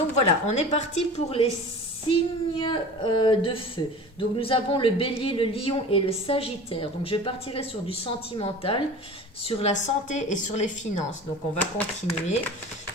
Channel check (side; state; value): both; normal; correlation 0.38